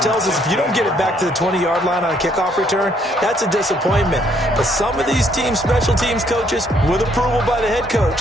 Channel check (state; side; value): normal; both; correlation 0.68